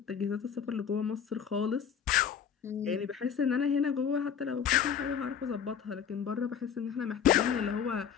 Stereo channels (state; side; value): quieter; right; 7.8 dB